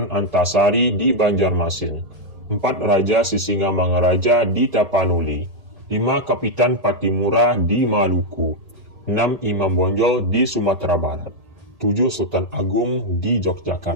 Antasari di Banjarmasin. 4. Raja Sisingamangaraja di Tapanuli. 5. Kapitan Patimura di Maluku. 6. Imam Bonjol di Sumatera Barat. 7. Sultan Agung di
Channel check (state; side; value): late; left; 1.8 ms